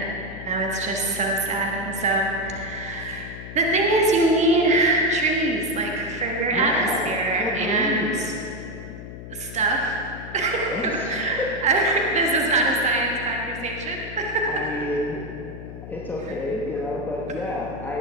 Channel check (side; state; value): left; noise; hum, 12 dB below the sound